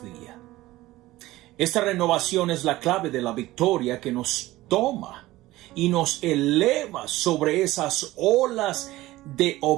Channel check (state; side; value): quieter; left; 17.5 dB